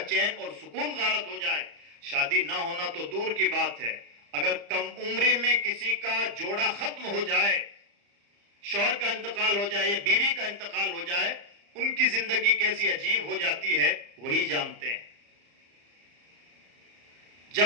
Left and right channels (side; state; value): left; late; 35 ms